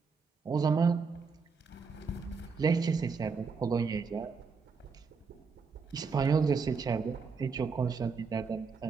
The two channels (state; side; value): quieter; left; 5.1 dB